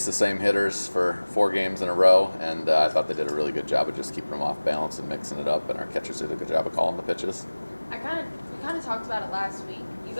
the same hitters for 4 games in a row, and I thought they did a really good job of just keeping them off balance and mixing it up, and our catchers did a good job of calling the pitches. We kind of talked about it last week. You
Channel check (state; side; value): inverted; both; correlation -1.00